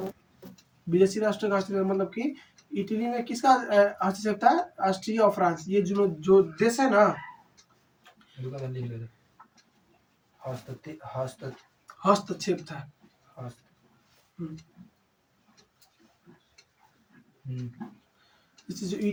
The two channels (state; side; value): identical; both; correlation 1.00